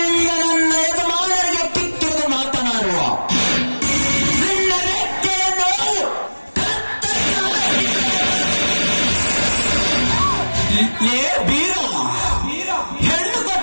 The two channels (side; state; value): both; inverted; correlation -1.00